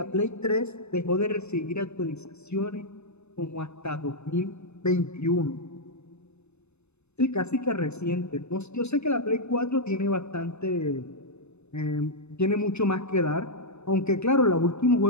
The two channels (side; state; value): right; late; 0.81 ms